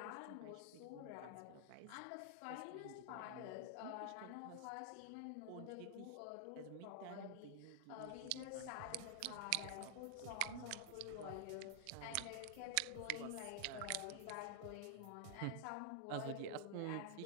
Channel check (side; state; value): both; different; correlation 0.00